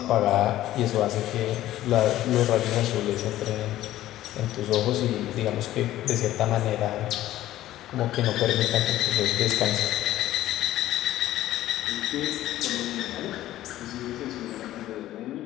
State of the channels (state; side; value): quieter; right; 14.3 dB